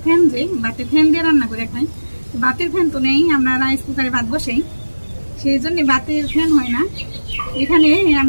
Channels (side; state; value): both; inverted; correlation -1.00